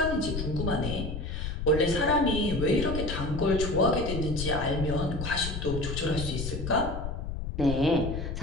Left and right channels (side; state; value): left; noise; rumble, 5 dB below the sound